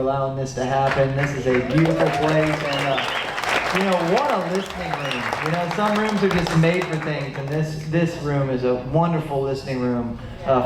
this to happen. This is a beautiful place, and you know, what a listening room. You know, some rooms are just made for things, and this room is a wonderful listening room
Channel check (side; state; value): both; identical; correlation 1.00